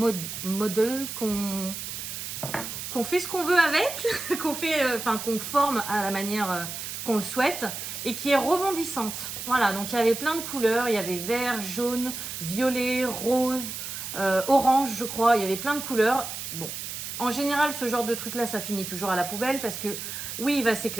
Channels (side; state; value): right; noise; hiss, 7 dB below the sound